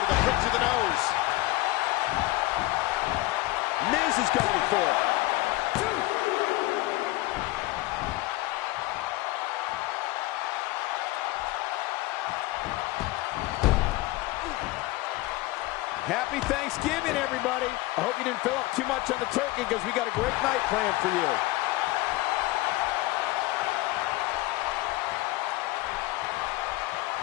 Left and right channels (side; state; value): right; quieter; 19.3 dB